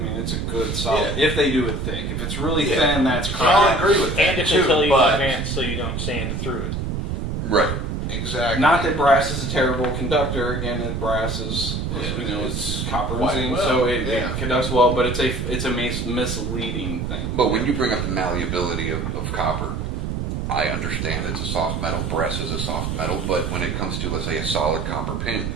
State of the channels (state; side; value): noise; right; rumble, 2 dB below the sound